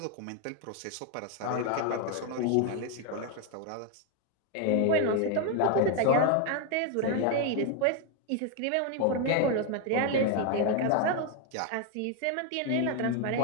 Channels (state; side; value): different; both; correlation 0.01